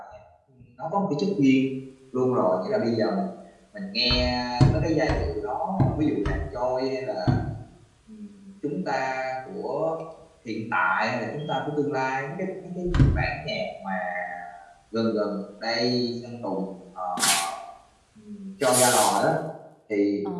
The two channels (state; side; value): identical; both; correlation 1.00